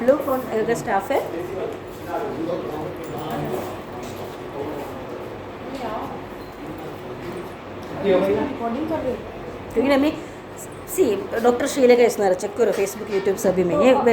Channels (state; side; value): identical; both; correlation 1.00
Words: लोग कौन अगर स्टाफ है? रिकॉर्डिंग कर रहे हो? क्योंकि ना मैं डॉक्टर शीला का इस्तेमाल चेक करो फेसबुक यूट्यूब सभी में, ये